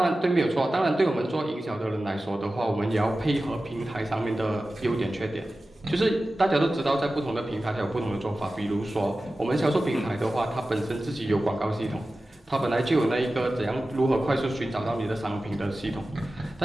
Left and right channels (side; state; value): both; normal; correlation 0.95